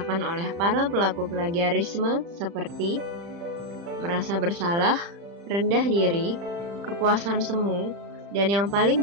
oleh para pelaku plagiarisme seperti merasa bersalah, rendah diri, kepuasan semu, dan yang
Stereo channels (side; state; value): left; late; 35 ms